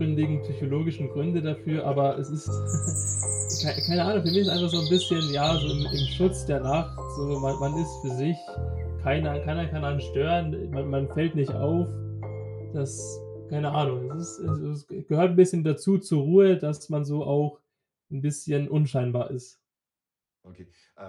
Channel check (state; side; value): identical; both; correlation 1.00